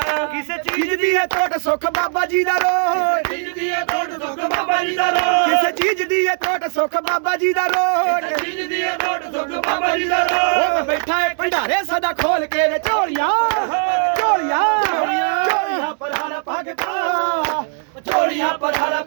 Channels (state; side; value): silent; left; 57 dB below the other